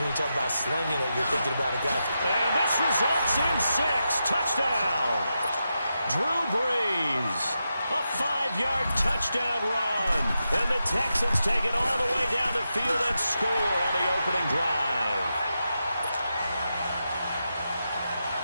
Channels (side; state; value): both; inverted; correlation -0.88